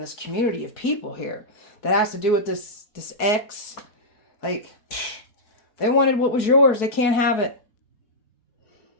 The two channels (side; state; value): right; late; 4.6 ms